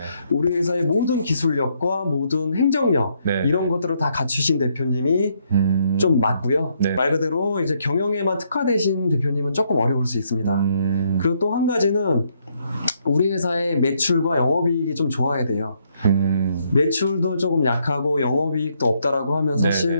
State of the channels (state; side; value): inverted; both; correlation -0.73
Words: 우리 회사의 모든 기술력과 모든 행정력 이런 것들을 다 갖추신 대표님이 좀 맞고요. 네. 말 그대로 이제 경영에만 특화되신 대표님은 조금 어려울 수 있습니다. 그리고 또 한 가지는 우리 회사의 매출과 영업이익이 좀 좋아야 돼요. 매출도 조금 약하고 영업이익도 없다라고 하면